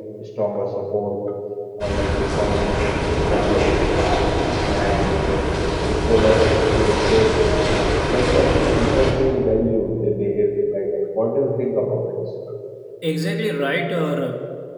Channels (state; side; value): identical; both; correlation 1.00